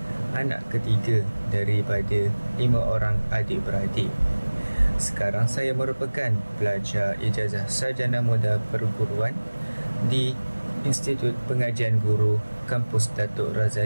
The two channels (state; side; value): inverted; both; correlation -1.00